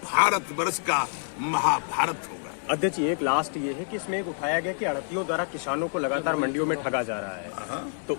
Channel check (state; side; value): silent; right; digital silence